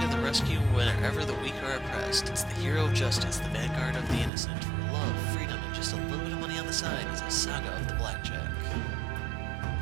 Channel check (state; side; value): drops out; left; at 4.3 s